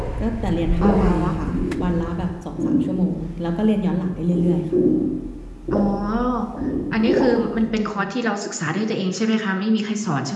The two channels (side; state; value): both; identical; correlation 1.00